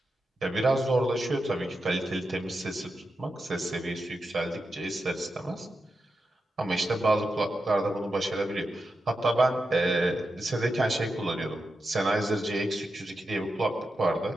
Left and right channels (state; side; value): normal; both; correlation 0.89